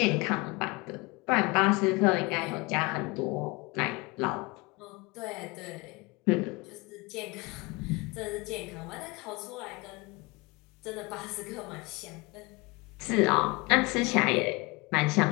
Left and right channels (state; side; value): quieter; right; 25.5 dB